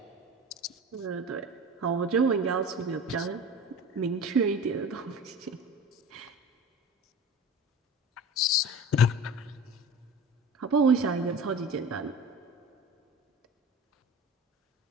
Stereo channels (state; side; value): normal; both; correlation 0.35